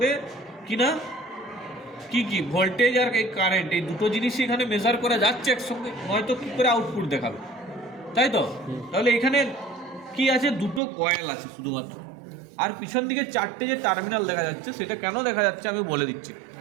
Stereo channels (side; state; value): left; drops out; at 10.8 s